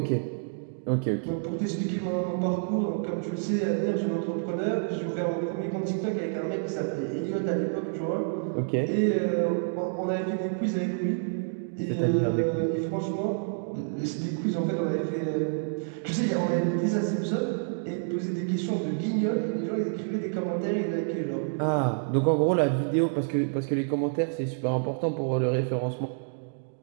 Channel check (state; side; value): silent; left; digital silence